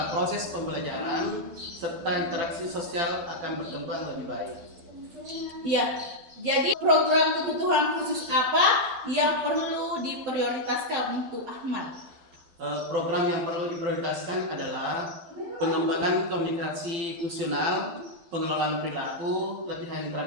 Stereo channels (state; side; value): late; left; 12 ms